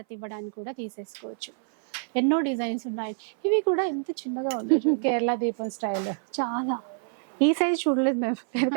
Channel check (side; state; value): left; silent; 58 dB below the other